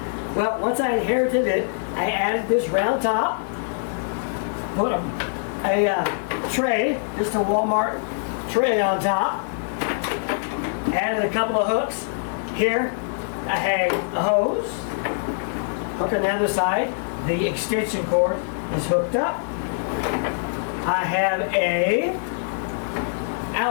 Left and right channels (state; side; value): silent; right; 63 dB below the other